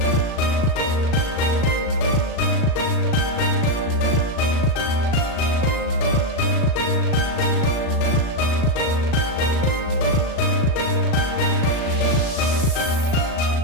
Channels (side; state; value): right; late; 38 ms